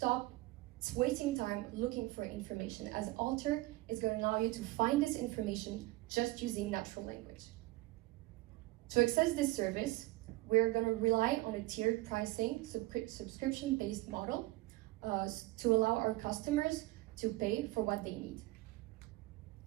wasting time looking for information, as Alter is going to allow you to find this information just using natural language. To access this service, we're going to rely on a tiered pricing, subscription-based model to allow our customers to pay for what they need.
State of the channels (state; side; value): quieter; left; 19.3 dB